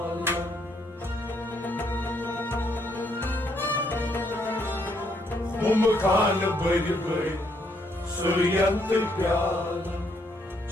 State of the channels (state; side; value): normal; both; correlation 0.72